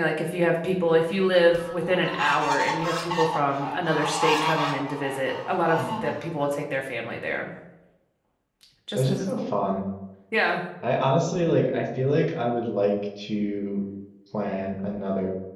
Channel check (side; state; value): both; identical; correlation 1.00